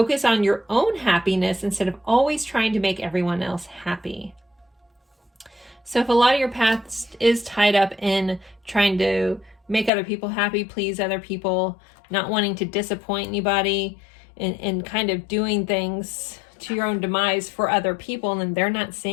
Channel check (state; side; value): drops out; right; at 9.9 s